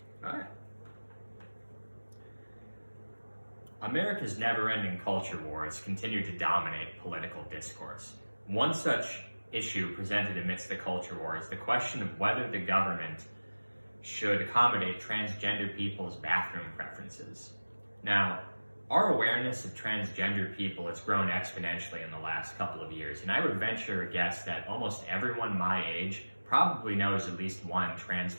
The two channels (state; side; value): inverted; both; correlation -1.00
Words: All right. America's never-ending culture wars continue to dominate political discourse. One such issue presented amidst the culture war is the question of whether the government should accommodate transgender people's bathroom preferences. Now, our awareness of transgender people has grown exponentially in the last couple of years, and I would venture a guess that almost everyone my age probably knows at least one